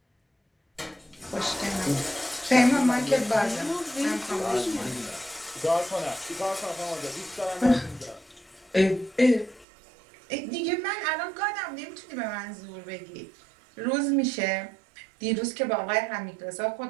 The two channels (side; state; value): left; drops out; at 9.7 s